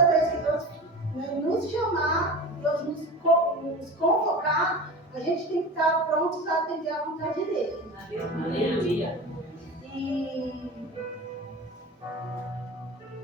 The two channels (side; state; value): both; normal; correlation 0.32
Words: vez que Deus, né, nos chamar, Deus nos convocar, a gente tem que estar prontos a atender a vontade dele. Aleluia. E